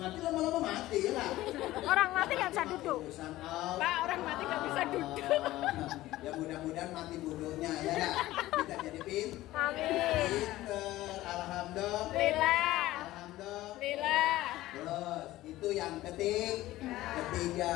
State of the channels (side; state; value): right; quieter; 16.3 dB